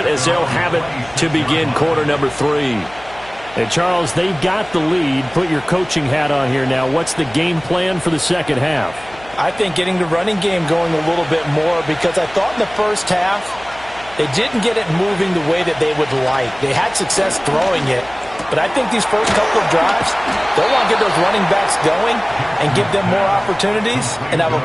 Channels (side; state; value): left; noise; hum, 22 dB below the sound